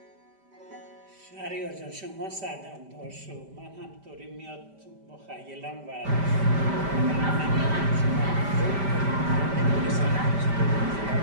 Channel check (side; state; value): left; late; 5.1 ms